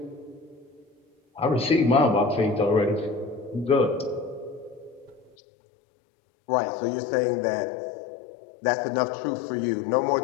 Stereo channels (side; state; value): right; drops out; at 5.4 s